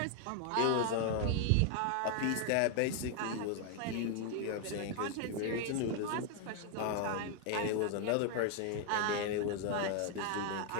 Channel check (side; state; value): both; different; correlation 0.00